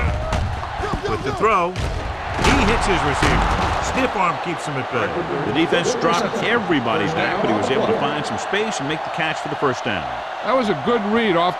With the throw, he hits his receiver. Stiff arm keeps him at bay. The defense dropped everybody's back, but he was able to find some space and make the catch for the first down. That was a good read off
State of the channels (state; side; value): identical; both; correlation 1.00